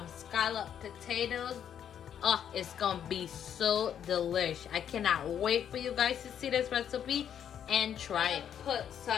scallop potatoes. Oh, it's gonna be so delish. I cannot wait for you guys to see this recipe and try it. Put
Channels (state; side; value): quieter; right; 9.1 dB